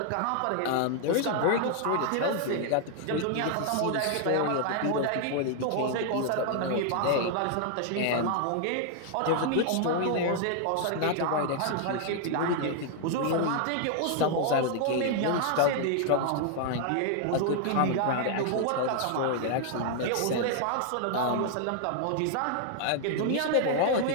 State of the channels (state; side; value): different; both; correlation -0.01